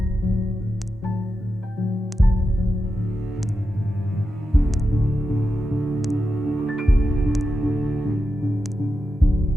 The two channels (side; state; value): both; normal; correlation 0.89